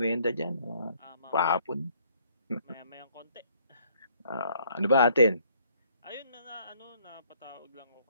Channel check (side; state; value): both; inverted; correlation -0.64